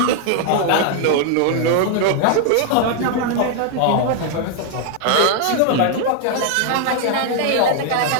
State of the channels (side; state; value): both; different; correlation 0.00